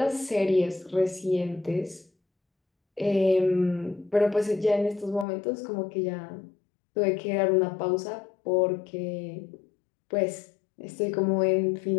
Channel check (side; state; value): right; drops out; at 5.2 s